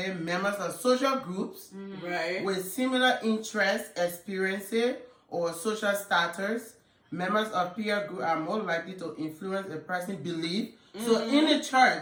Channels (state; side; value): identical; both; correlation 1.00